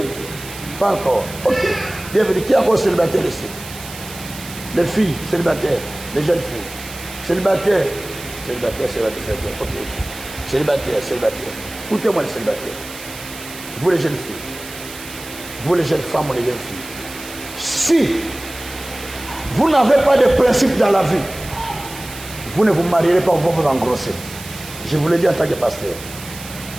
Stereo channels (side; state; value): right; noise; hiss, 14 dB below the sound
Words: pas encore. Ok, bienvenue. Qui est encore célibataire ici? Les filles célibataires, les jeunes filles. Célibataires, ok. Célibataire. Écoutez-moi les célibataires. Vous les jeunes filles, vous les jeunes femmes ou les jeunes filles. Si vous n'avez pas de principe dans la vie, vous ne vous marierez pas, vous vous engrossez. Je vous l'ai dit en tant que pasteur.